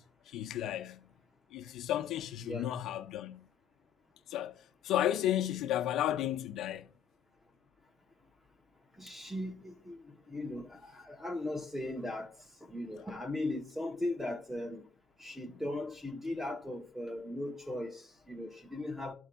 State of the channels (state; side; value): quieter; right; 6.1 dB